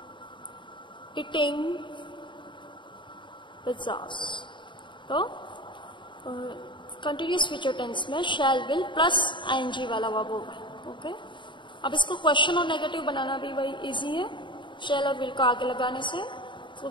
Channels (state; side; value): late; right; 0.23 ms